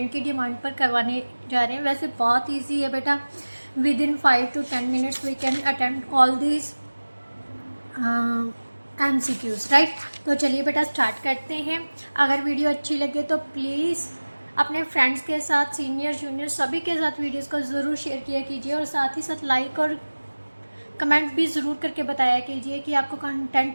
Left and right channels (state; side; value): inverted; both; correlation -1.00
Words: की डिमांड पर करवाने जा रहे हैं। वैसे बहुत इजी है बेटा, within 5 to 10 minutes we can attempt all this MCQs, right. तो चलिए बेटा स्टार्ट करते हैं। अगर वीडियो अच्छी लगे तो प्लीज़ अपने फ्रेंड्स के साथ, सीनियर जूनियर सभी के साथ वीडियोस को ज़रूर शेयर किया कीजिए, और साथ ही साथ लाइक और कमेंट भी ज़रूर करके बताया कीजिए कि आपको